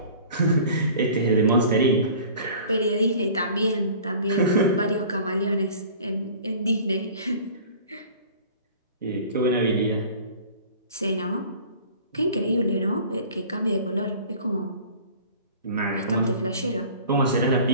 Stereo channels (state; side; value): inverted; both; correlation -0.45